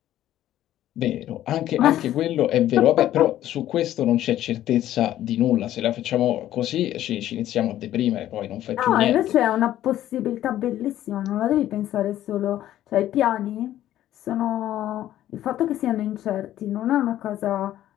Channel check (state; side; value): quieter; right; 12.9 dB